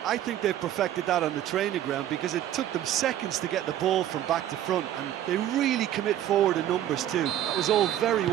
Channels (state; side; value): quieter; left; 11.9 dB